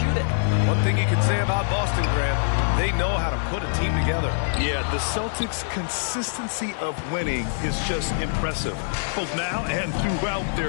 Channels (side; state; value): right; silent; digital silence